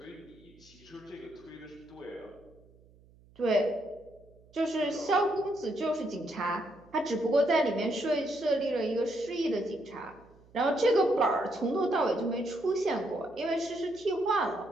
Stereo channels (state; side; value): noise; right; hum, 27 dB below the sound